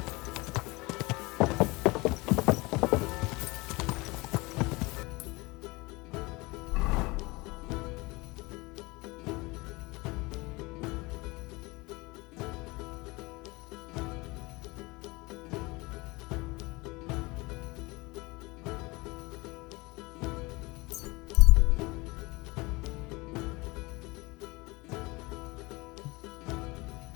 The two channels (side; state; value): right; quieter; 23.8 dB